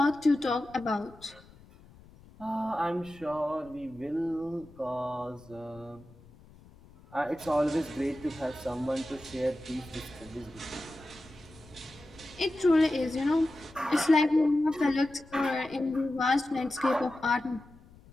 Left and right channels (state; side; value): noise; left; rumble, 23 dB below the sound